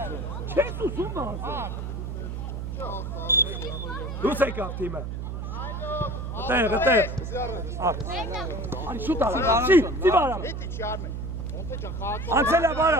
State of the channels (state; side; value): noise; right; hum, 5 dB below the sound